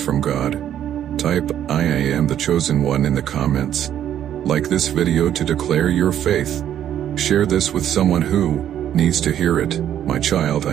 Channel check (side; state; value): left; quieter; 10.5 dB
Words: from God. Type, I am the chosen one in the comments. Like this video to declare your faith. Share this with someone who needs to hear it. My child,